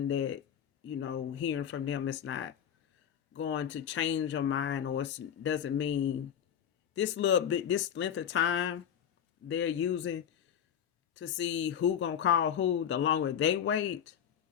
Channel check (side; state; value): right; quieter; 8.9 dB